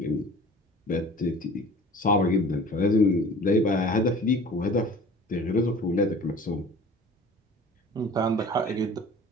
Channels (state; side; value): normal; both; correlation 0.45